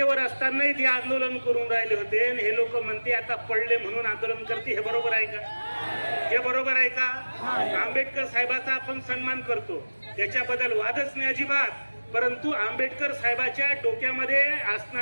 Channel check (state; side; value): inverted; both; correlation -1.00